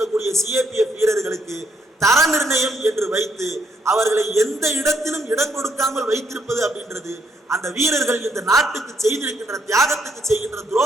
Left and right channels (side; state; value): both; normal; correlation 0.73